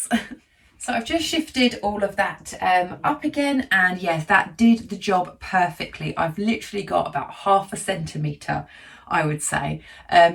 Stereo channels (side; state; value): both; identical; correlation 1.00